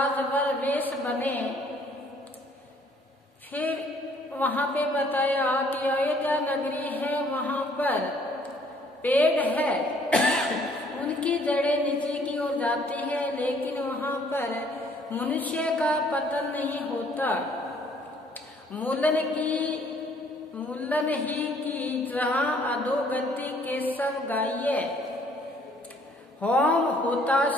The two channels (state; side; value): normal; both; correlation 0.61